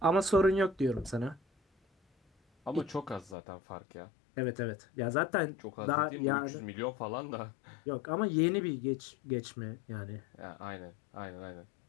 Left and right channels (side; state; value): right; drops out; at 3.4 s